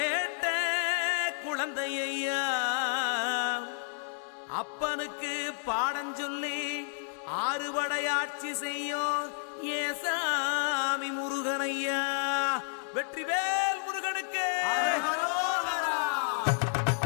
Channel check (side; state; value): right; silent; 57 dB below the other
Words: குழந்தையா, அப்பனுக்கு பாடம் சொல்லி ஆறுபடையாட்சி செய்யும் ஏசாமி முருகனையா. வெற்றிவேல் முருகனுக்கு.